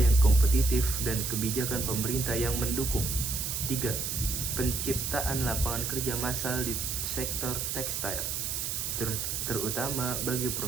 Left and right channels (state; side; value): noise; right; hiss, 2 dB below the sound